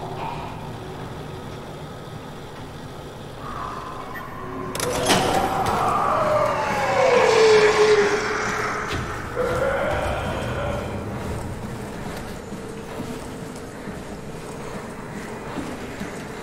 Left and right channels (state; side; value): identical; both; correlation 1.00